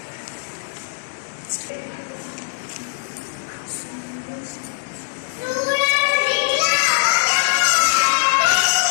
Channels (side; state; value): right; silent; digital silence